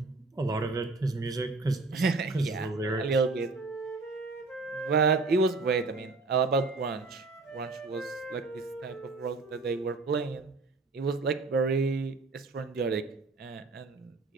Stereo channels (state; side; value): quieter; left; 3.7 dB